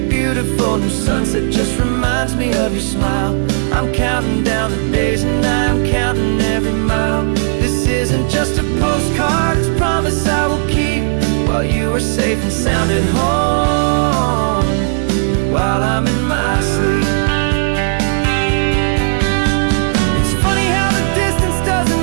new sunset just reminds me of your smile. I'm counting down the days and I'm counting every mile. This isn't just a postcard, it's a promise I will keep, while you are safe and sound at home, while I'm in my sleep. It's funny how the distance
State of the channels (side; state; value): left; silent; digital silence